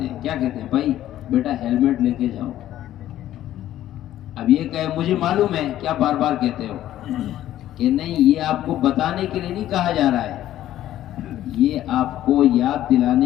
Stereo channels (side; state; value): right; quieter; 12.9 dB